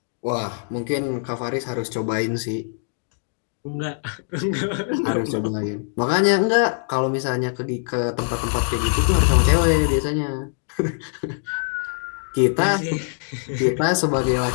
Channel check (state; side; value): silent; right; 62 dB below the other